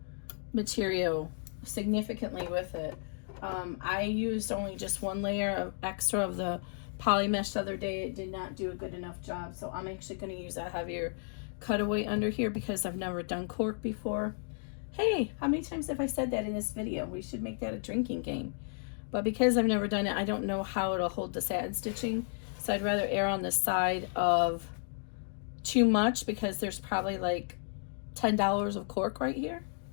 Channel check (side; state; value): right; silent; digital silence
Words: material significantly with it. I used only just one layer of extra of the poly mesh the other day. It did not do a good enough job, so I'm actually going to use a heavier cutaway under here because I've never done cork before. Hey, how many times have I said that in this video? We should make that a drinking game. But because I've never done it, I don't know how it'll hold the satin stitching, so I'd rather err on the side of too much because there's probably like $10 of cork right here.